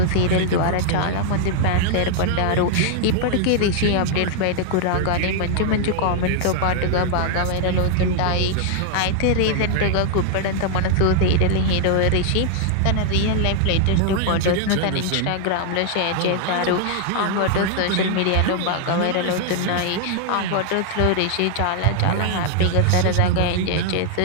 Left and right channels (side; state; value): both; different; correlation 0.00